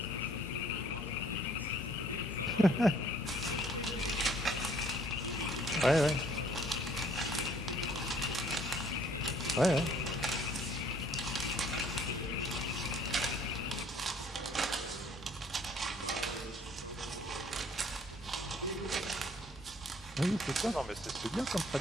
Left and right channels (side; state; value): both; normal; correlation 0.59